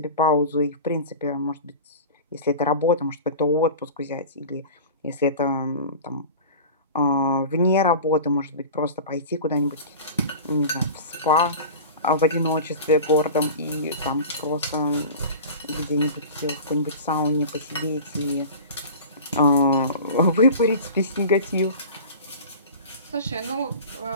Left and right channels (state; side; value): inverted; both; correlation -0.35